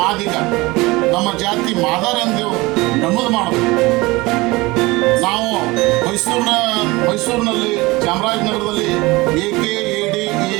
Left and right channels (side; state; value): left; quieter; 22.1 dB